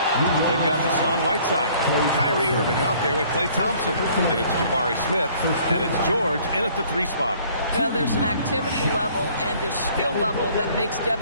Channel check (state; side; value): inverted; both; correlation -0.57